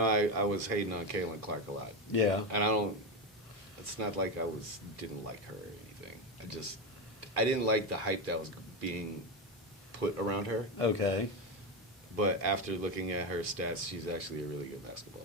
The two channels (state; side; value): normal; both; correlation 0.14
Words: I was hating on Caitlin Clark a lot, Yeah. and I don't. It's not like I didn't like her or anything. I didn't like the hype that was being put around her. Okay. But after looking at her stats, she's actually a really good